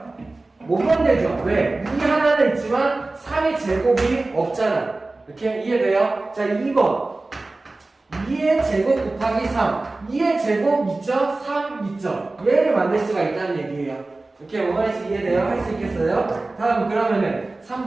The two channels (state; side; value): quieter; left; 3.2 dB